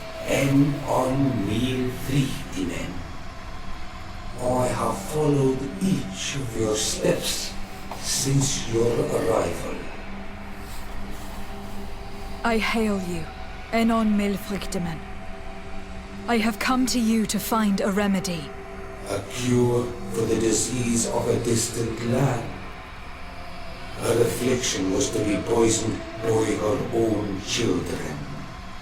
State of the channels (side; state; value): both; identical; correlation 1.00